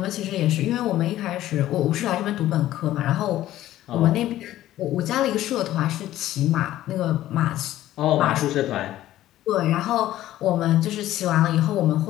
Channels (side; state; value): right; quieter; 14.0 dB